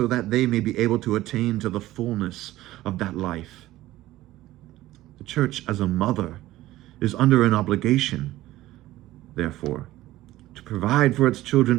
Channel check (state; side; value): quieter; left; 16.0 dB